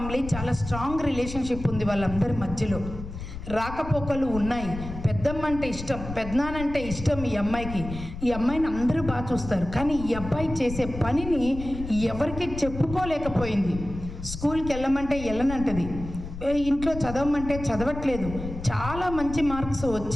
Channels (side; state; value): left; noise; rumble, 9 dB below the sound